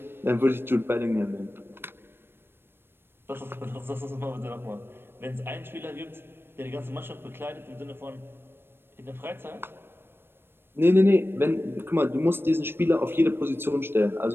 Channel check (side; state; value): left; late; 0.11 ms